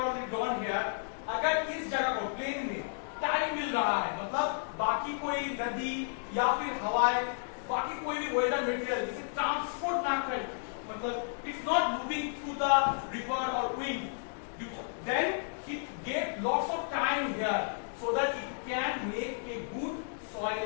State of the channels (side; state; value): right; silent; digital silence